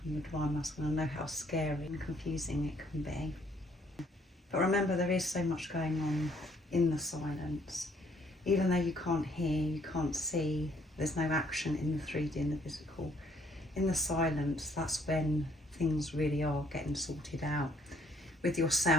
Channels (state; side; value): normal; both; correlation 0.65